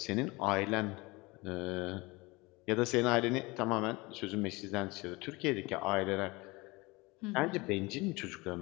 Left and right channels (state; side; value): quieter; right; 23.9 dB